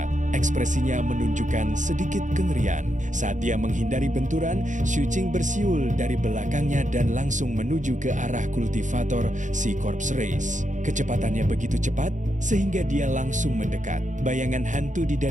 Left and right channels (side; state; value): left; late; 0.36 ms